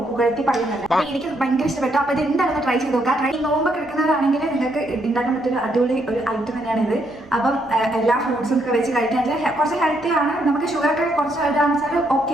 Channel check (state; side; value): noise; right; hum, 27 dB below the sound